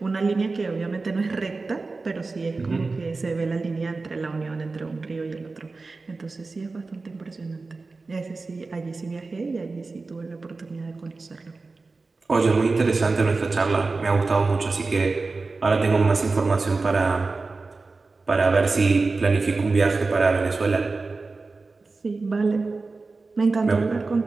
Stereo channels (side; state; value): left; quieter; 3.8 dB